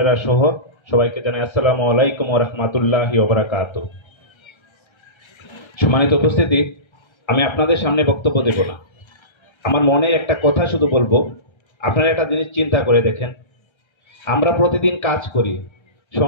সহ সবাইকে জানাই আসসালামু আলাইকুম ওয়া রাহমাতুল্লাহি ওয়া বারাকাতুহু। সম্মানিত উপস্থিতি, আমি আপনাদের সামনে বক্তব্য দেব না, আমার মনে একটা কথা শুধু বলবো। আপনারা একটা জিনিস চিন্তা করে দেখেন, আমরা প্রতিদিন কাজ করি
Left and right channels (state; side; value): late; right; 1.3 ms